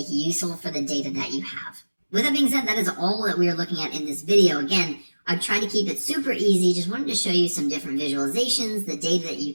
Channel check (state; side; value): inverted; both; correlation -1.00